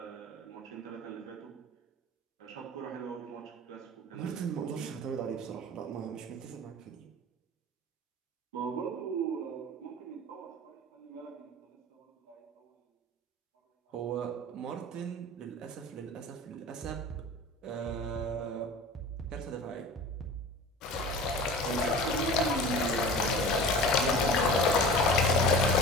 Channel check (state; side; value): normal; both; correlation 0.37